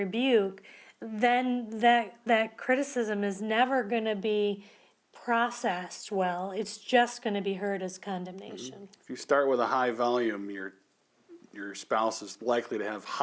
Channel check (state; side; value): identical; both; correlation 1.00